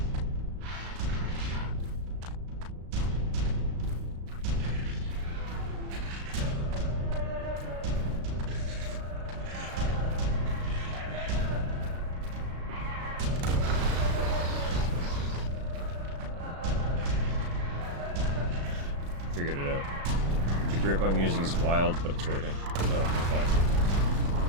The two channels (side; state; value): left; late; 36 ms